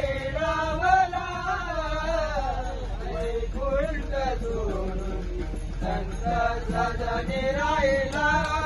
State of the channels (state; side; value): identical; both; correlation 1.00